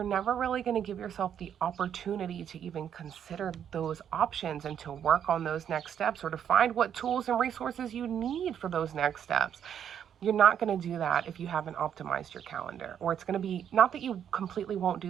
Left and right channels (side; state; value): left; quieter; 8.9 dB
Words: never really going to give yourself the opportunity to even consider those options and to work on those next steps, or to find what tools and resources you need for those next steps. You're not going to do that if you haven't optimized your calendar. Or it's going to be, not that you completely won't